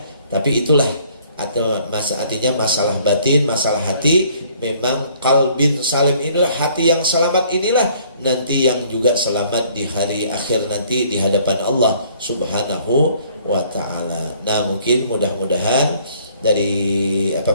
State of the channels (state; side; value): inverted; both; correlation -0.60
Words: tapi itulah artinya masalah batin, masalah hati. Memang qalbin salim inilah, hati yang selamat inilah nanti yang juga selamat di hari akhir nanti di hadapan Allah Subhanahu wa ta'ala. Nah, mungkin mudah-mudahan dari